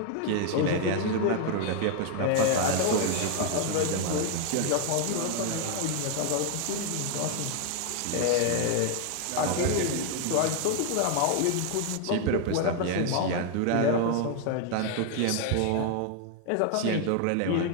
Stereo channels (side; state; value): both; different; correlation 0.00